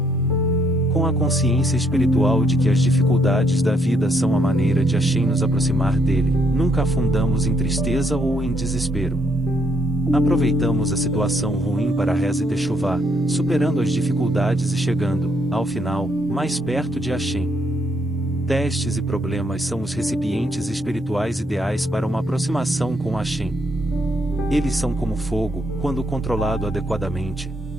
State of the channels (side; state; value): both; normal; correlation 0.73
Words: Com a consciência espiritual de que as dificuldades da vida são a maneira de Hashem nos aproximar dele, nunca afundamos em tristeza ou em desespero. Aproveitamos a situação ruim para a reza e techuvá, superando as dificuldades e chegando, ao final, mais perto de Hashem. Testes e problemas são os recipientes espirituais ideais para uma aproximação com Hashem. Eles são como fogo, quando controlado adequadamente.